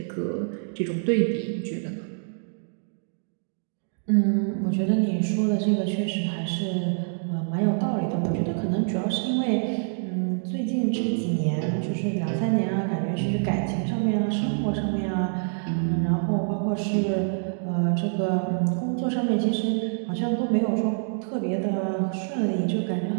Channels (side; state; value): left; silent; digital silence